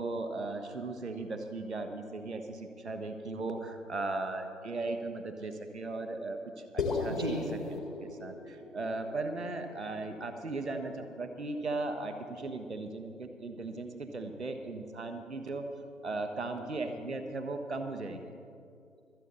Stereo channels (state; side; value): normal; both; correlation 0.66